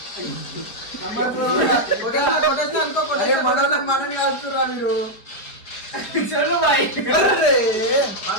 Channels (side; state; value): right; late; 4.6 ms